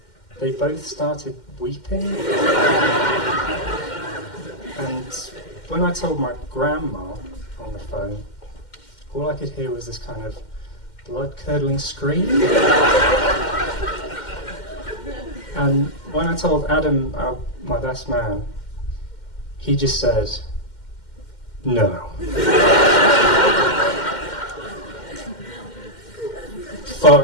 they both started weeping. And when I told my grandma on the phone, all I could hear was this kind of blood-curdling scream. And when I told Adam, my best man, he just said, no.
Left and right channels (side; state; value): right; late; 2.1 ms